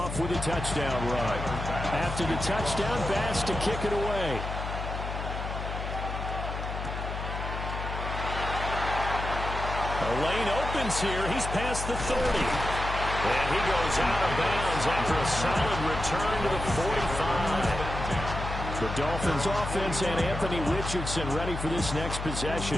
with a touchdown run. After the touchdown, Bass to kick it away. The lane opens here. He's past the 30. And he goes out of bounds after a solid return to the 45. The Dolphins offense and Anthony Richardson ready for this next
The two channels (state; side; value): noise; left; hum, 5 dB below the sound